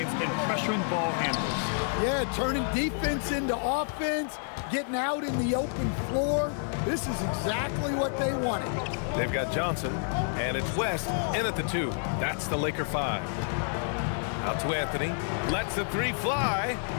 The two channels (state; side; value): silent; right; 58 dB below the other